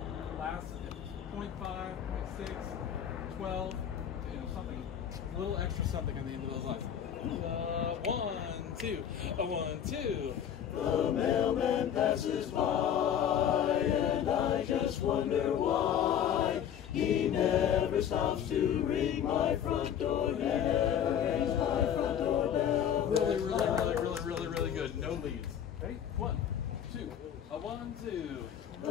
last 0.5, 0.6, 12, you know, something, a little extra something on the end of those lines. 1, 2, a 1, 2. The mailman passes by, and I just wonder why he never stops to ring my front door. He never rings my front door bell. Really good. No leads. Ready? 1, 2, a 1, 2.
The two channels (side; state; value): right; quieter; 9.2 dB